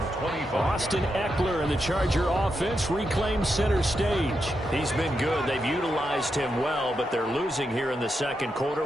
25. Austin Eckler and the Charger offense reclaim center stage. He's been good. They've utilized him well, but they're losing here in the second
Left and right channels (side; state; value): both; normal; correlation 0.85